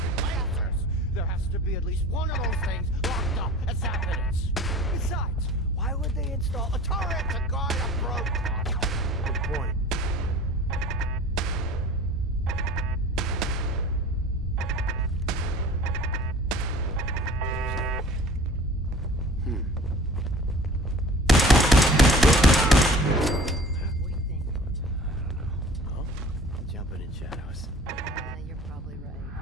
and lancers! There has to be at least one of those things locked up as evidence. Besides, why would they install a turret to guard a broke? Good point. What do you think? Huh? Jumping in shadows. You're probably right.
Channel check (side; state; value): both; normal; correlation 0.44